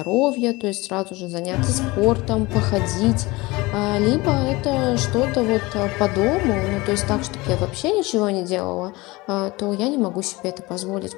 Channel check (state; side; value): quieter; right; 22.1 dB